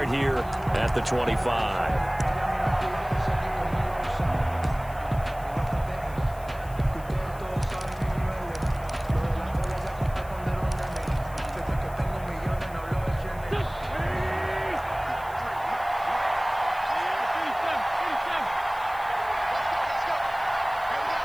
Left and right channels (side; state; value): left; noise; hiss, 22 dB below the sound